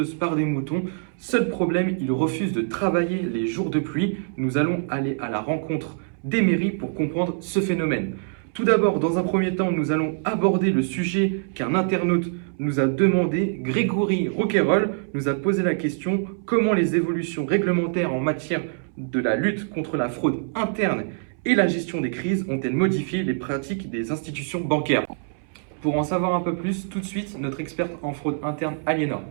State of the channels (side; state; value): left; silent; 62 dB below the other